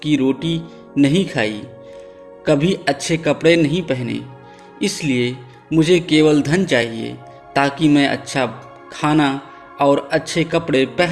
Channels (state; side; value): identical; both; correlation 1.00